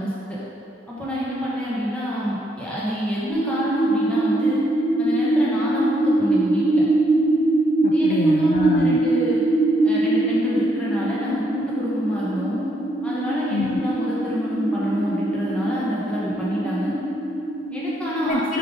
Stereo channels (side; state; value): both; normal; correlation 0.74